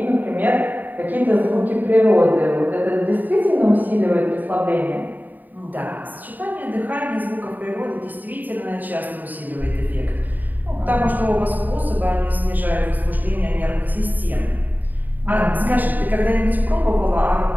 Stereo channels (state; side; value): late; left; 0.086 ms